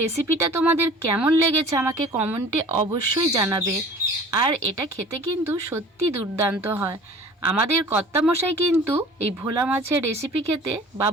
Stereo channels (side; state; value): both; normal; correlation 0.45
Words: রেসিপিটা তোমাদের কেমন লেগেছে আমাকে কমেন্টে অবশ্যই জানাবে। আর এটা খেতে কিন্তু সত্যি দুর্দান্ত হয়। আমাদের কর্তামশাই কিন্তু এই ভোলা মাছের রেসিপি খেতে বা